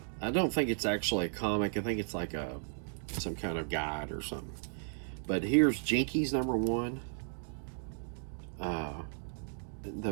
don't think it's actually a comic. I think it's like some kind of guide or something. But here's Jinkies number 1.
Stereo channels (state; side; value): silent; left; digital silence